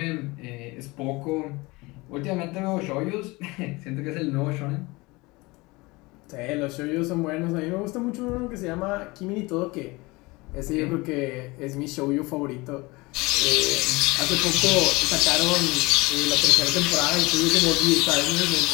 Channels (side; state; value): right; quieter; 23.4 dB